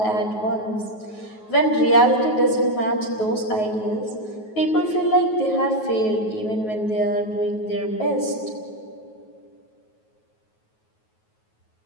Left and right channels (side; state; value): right; late; 9.3 ms